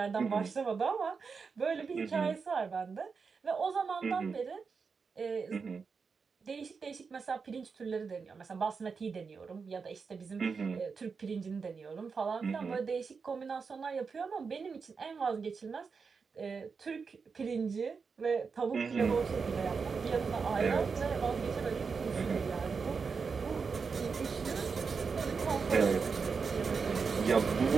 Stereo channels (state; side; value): quieter; left; 5.3 dB